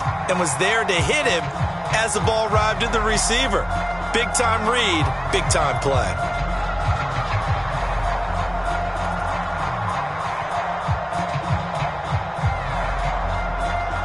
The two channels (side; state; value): both; identical; correlation 1.00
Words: and was there to hit him as the ball arrived at the receiver. Big-time read, big-time play.